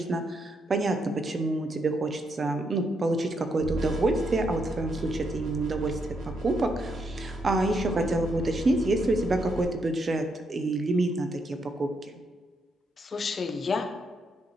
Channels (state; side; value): normal; both; correlation 0.78